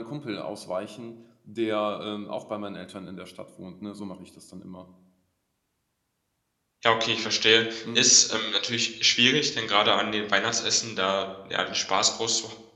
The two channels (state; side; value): identical; both; correlation 1.00